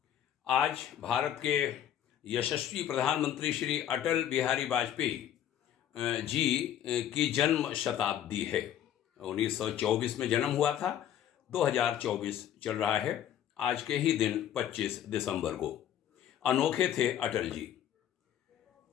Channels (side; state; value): right; quieter; 10.7 dB